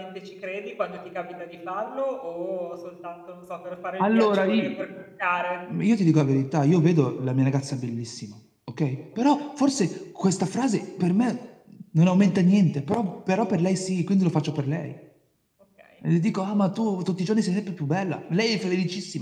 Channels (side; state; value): both; identical; correlation 1.00